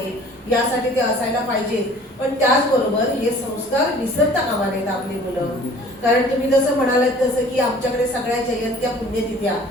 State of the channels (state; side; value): normal; both; correlation 0.50